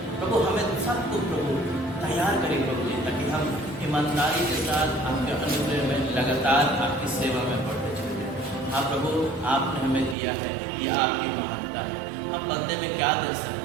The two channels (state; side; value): drops out; left; at 10.2 s